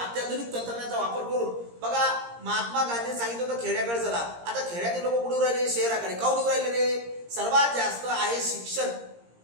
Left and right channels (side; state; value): left; late; 17 ms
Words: अत्याधुनिक तंत्रज्ञानाचा वापर करून बघा महात्मा गांधींनी सांगितलं होतं खेड्याकडे चला. आता खेड्यातील लोक कुठे राहिले, शहराकडे. काऊन राहिले रे, सर्वात जास्त आहे शिक्षण